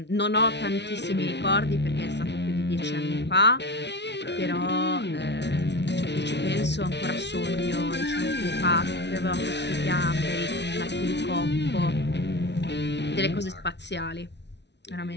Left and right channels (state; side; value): late; right; 0.50 ms